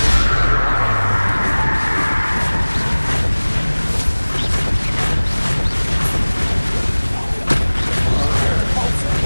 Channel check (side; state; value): both; inverted; correlation -1.00